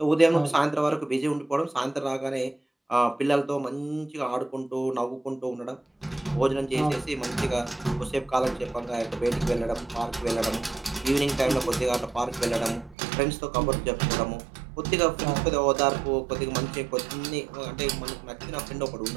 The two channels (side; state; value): left; drops out; at 13.0 s